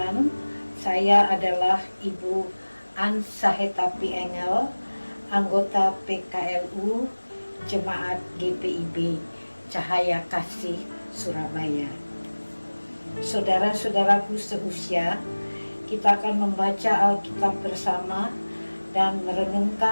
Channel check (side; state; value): both; inverted; correlation -1.00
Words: saya adalah Ibu An Sahetapi Engel, anggota PKLU Jemaat GPIB Cahaya Kasih Surabaya. Saudara-saudaraku seusia, kita akan membaca Alkitab bersama dan